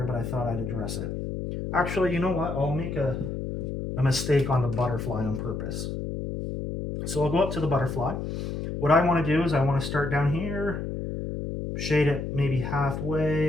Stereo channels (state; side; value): noise; left; hum, 4 dB below the sound